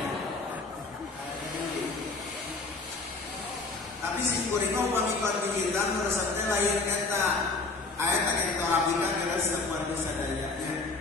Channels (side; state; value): right; quieter; 3.7 dB